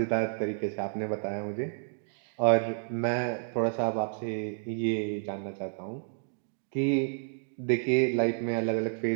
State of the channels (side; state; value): left; silent; digital silence